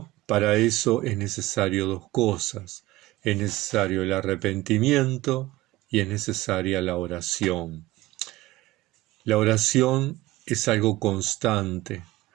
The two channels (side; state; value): left; quieter; 17.8 dB